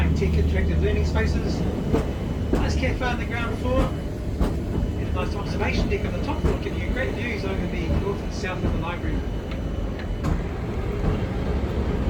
interactive learning spaces. Nice cafe on the ground floor. And a nice observation deck on the top floor giving you great views over the north and south of the library.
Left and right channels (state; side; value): identical; both; correlation 1.00